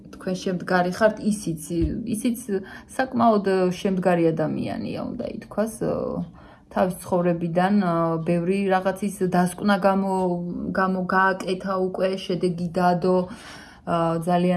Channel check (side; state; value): both; identical; correlation 1.00